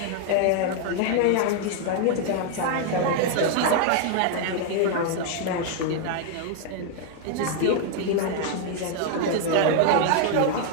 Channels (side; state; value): both; different; correlation 0.00